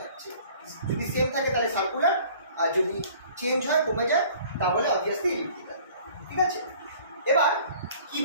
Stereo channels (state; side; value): inverted; both; correlation -0.50